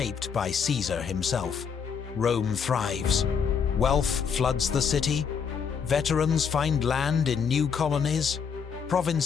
by Caesar himself. Rome thrives. Wealth floods the city. Veterans find land in new colonies.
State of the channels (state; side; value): quieter; right; 6.6 dB